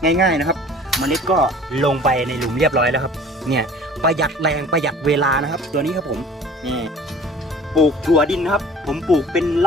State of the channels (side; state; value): both; normal; correlation 0.47